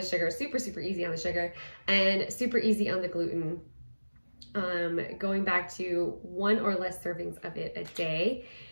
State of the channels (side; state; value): both; inverted; correlation -1.00